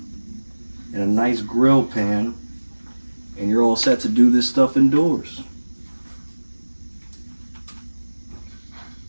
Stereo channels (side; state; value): both; inverted; correlation -1.00